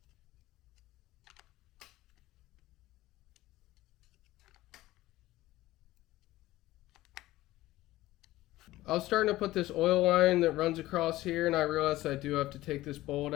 I was starting to put this oil line that runs across here, and I realized I do have to take this bolt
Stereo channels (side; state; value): right; quieter; 16.8 dB